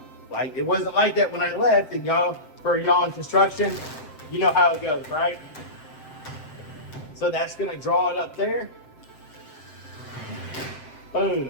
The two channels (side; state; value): right; late; 7.7 ms